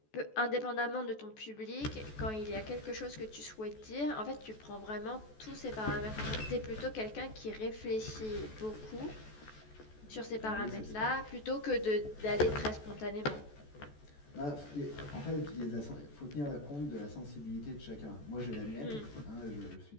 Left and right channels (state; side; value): late; right; 14 ms